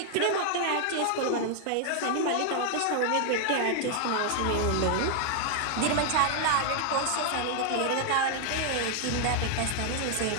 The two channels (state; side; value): different; both; correlation 0.00